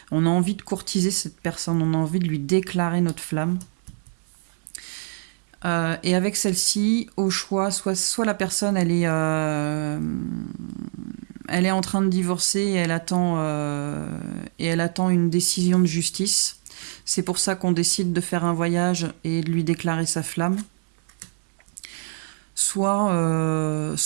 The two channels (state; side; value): silent; left; digital silence